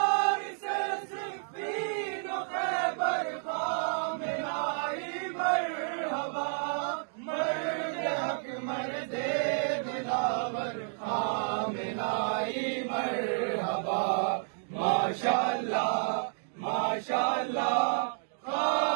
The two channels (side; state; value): left; silent; digital silence